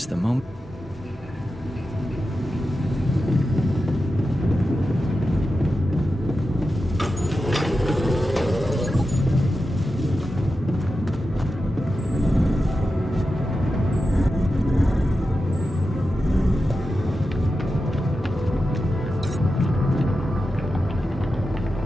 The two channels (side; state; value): both; normal; correlation 0.91